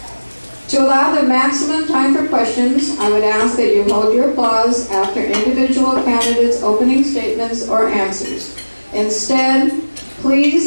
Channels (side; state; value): both; inverted; correlation -1.00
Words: To allow the maximum time for questions, I would ask that you hold your applause after individual candidates' opening statements or answers. Instead,